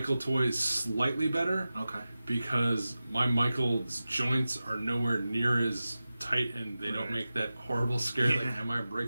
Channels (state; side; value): inverted; both; correlation -0.95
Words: toy slightly better. Okay. Because my Michael's joints are nowhere near as tight, and they don't make that horrible scare. Yeah. Like, am I